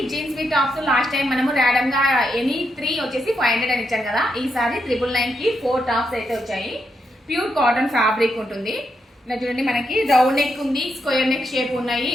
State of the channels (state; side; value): normal; both; correlation 0.82